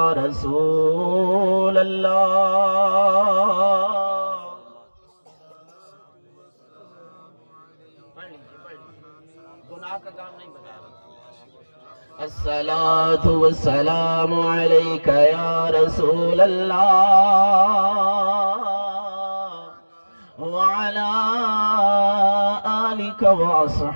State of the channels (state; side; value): inverted; both; correlation -1.00